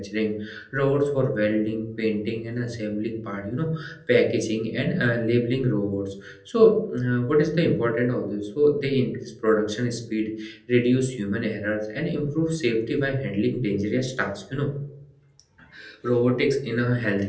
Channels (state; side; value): identical; both; correlation 1.00